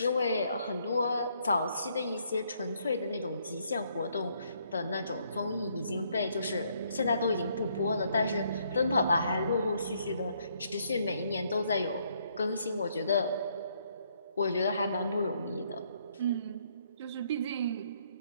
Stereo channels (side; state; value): both; inverted; correlation -0.70